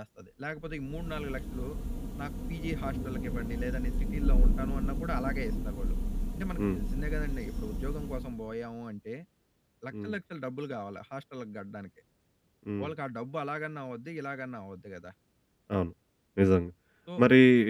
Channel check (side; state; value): both; identical; correlation 1.00